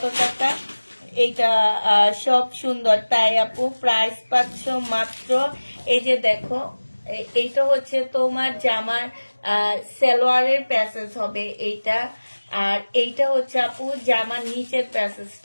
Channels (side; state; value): both; inverted; correlation -1.00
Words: টাকা? এইটা সব সুন্দর তাই আপু প্রাইস পাচ্ছ মাত্র, এই যে দেখো এইটা হচ্ছে তোমার জামার সালোয়ারের প্যাসেজ হবে এইটা, আর এইটা হচ্ছে আপু জামার নিচের